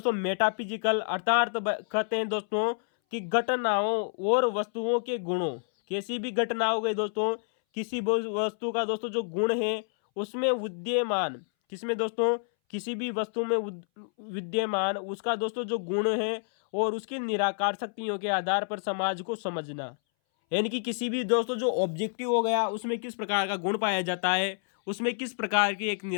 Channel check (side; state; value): right; silent; 59 dB below the other